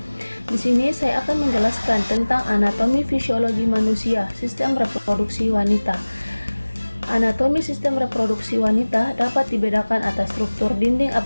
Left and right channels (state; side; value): inverted; both; correlation -1.00